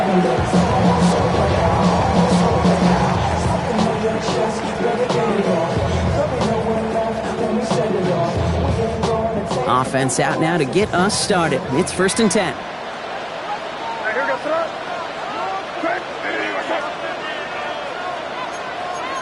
defense out now to get us started. It's 1st and 10. Hey, here goes throw.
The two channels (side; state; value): both; identical; correlation 1.00